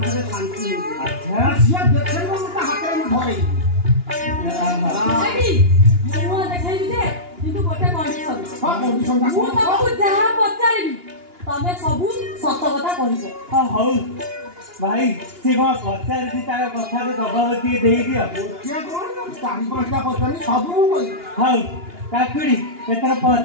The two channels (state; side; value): late; left; 2.9 ms